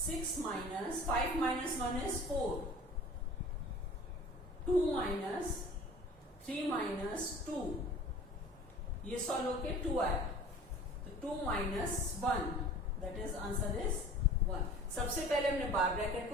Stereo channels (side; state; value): both; normal; correlation 0.44